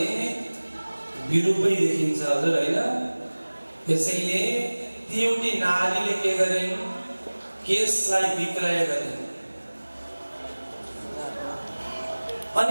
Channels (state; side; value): inverted; both; correlation -1.00